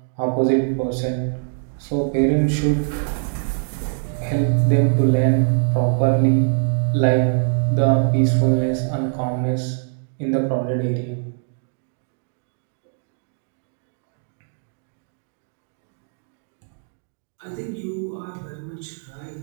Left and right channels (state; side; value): silent; left; digital silence